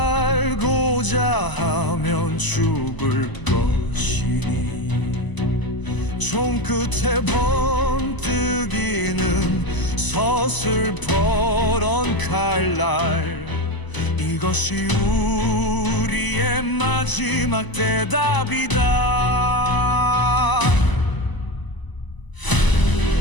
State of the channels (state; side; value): late; right; 1.0 ms